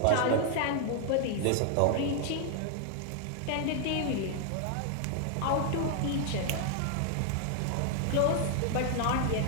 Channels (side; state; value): both; different; correlation 0.00